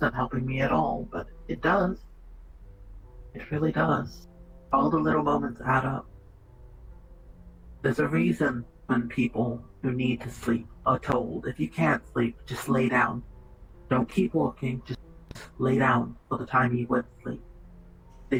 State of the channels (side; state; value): both; identical; correlation 1.00